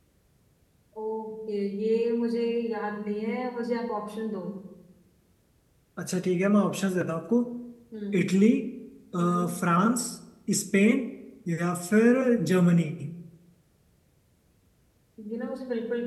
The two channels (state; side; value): identical; both; correlation 1.00